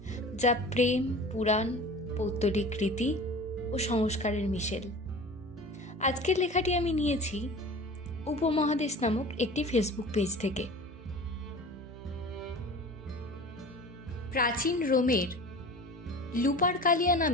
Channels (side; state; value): both; normal; correlation 0.38